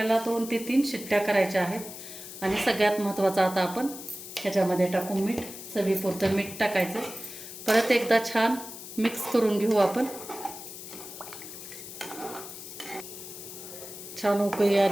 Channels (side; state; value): left; noise; hiss, 12 dB below the sound